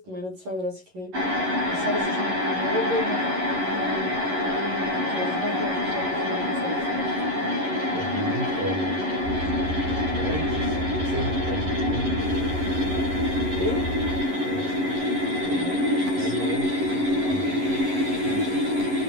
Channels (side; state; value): left; late; 11 ms